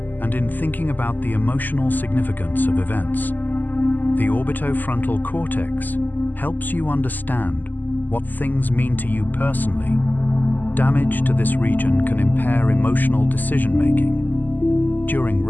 and in thinking about the emotional significance of events. The orbitofrontal cortex helps you understand what things mean to you personally. Damage to this region can impair emotional decision-making. During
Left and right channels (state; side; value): late; right; 0.086 ms